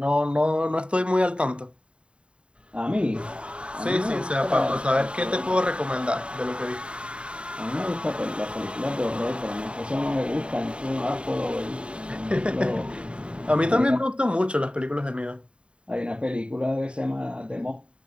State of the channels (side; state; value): left; late; 0.055 ms